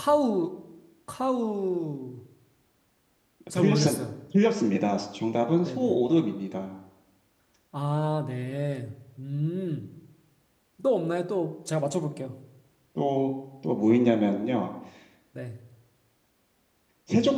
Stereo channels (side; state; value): both; identical; correlation 1.00